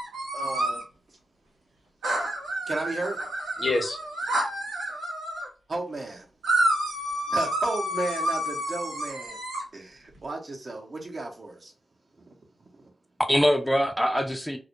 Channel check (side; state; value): both; normal; correlation 0.86